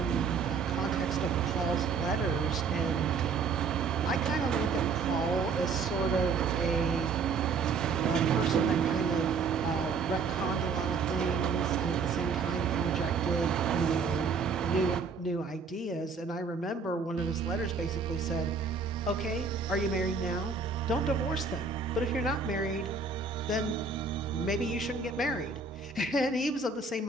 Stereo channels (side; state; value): left; quieter; 4.9 dB